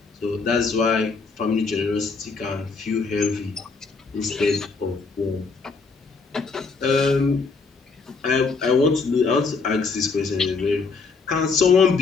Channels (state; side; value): quieter; right; 4.5 dB